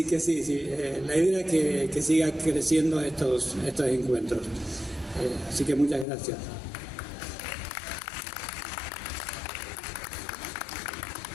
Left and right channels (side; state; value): right; drops out; at 6.1 s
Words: que sí, la idea es que siga creciendo estos encuentros. Así que muchas gracias.